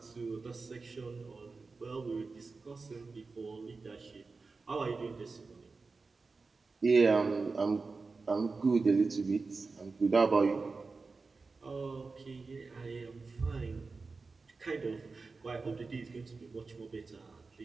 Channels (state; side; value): quieter; left; 4.1 dB